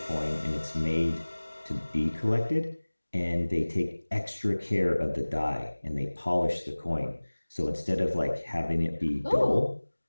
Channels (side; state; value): both; inverted; correlation -1.00